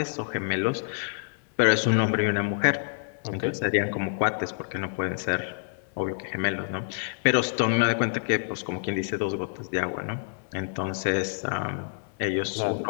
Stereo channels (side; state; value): right; silent; digital silence